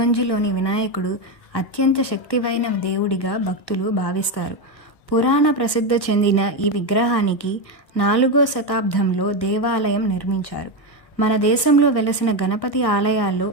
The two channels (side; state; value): right; late; 1.4 ms